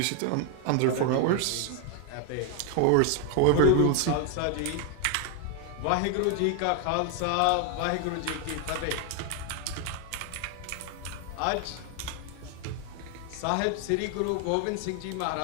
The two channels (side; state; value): both; different; correlation 0.00